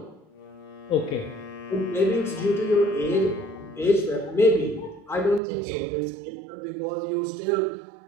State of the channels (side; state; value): left; drops out; at 5.4 s